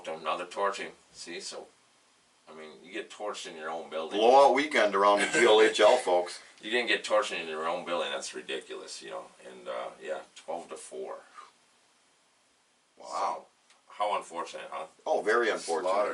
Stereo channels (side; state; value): both; identical; correlation 1.00